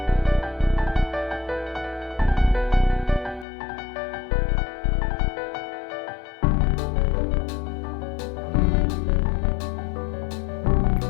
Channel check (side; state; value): right; drops out; at 3.5 s